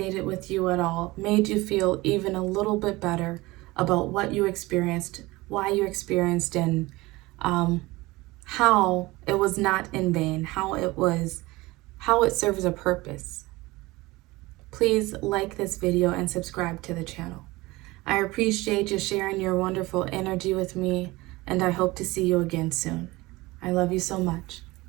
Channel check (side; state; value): left; quieter; 20.9 dB